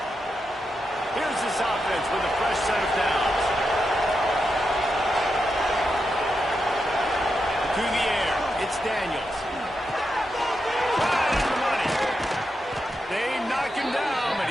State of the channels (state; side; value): normal; both; correlation 0.86